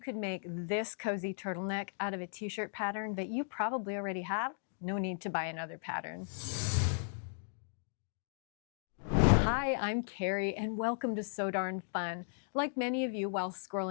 make this cozy turtleneck out of a t-shirt pattern that you probably already have? No need to buy another pattern. Hi, I'm Carrie and welcome to So Darn Fun. Like many of you, while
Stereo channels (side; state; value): right; silent; digital silence